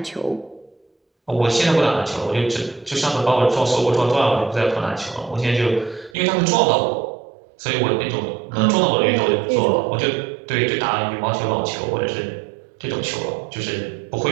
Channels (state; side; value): drops out; left; at 6.2 s